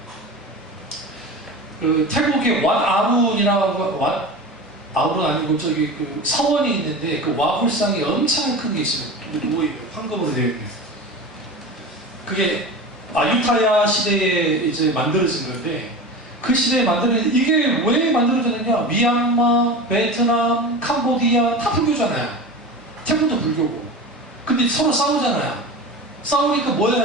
그 태국의 왓아룬이라고 아룬 아니고 저기 그 서원이 있는데 그 와불상이 엄청 큰 게 있어요. 황금으로 되어 있는. 그게 아유타야 시대에 이제 만들어진 건데 그 시대에 만들어진, 이게 왜 만들어졌느냐? 미얀마, 베트남, 캄보디아 다 불교잖아요. 태국도 불교고. 근데 서로 싸우잖아요. 싸우니까 뭐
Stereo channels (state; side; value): normal; both; correlation 0.30